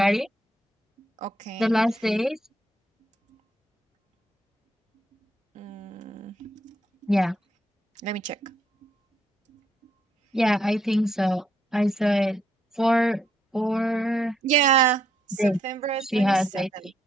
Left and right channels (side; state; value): both; normal; correlation 0.74